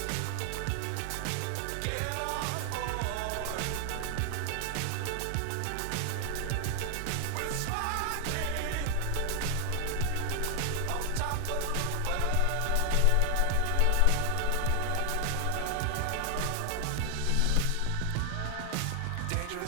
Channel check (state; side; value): different; both; correlation 0.00